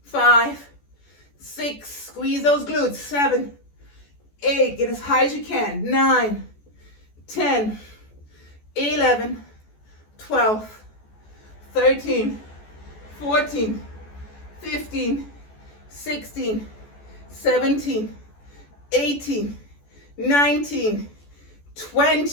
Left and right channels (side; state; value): right; late; 14 ms